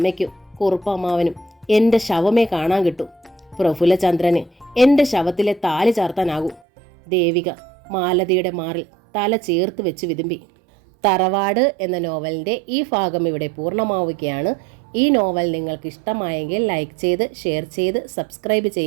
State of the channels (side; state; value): left; drops out; at 6.6 s